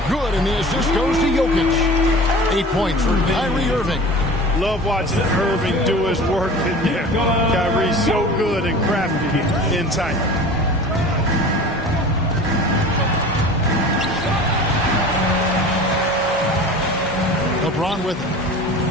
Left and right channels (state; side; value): normal; both; correlation 0.39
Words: Good, and the assist goes to Jokic. 8 points for Kyrie Irving. Love watching Irving do his work in there. Kyrie's so good and crafty in tight. LeBron with it.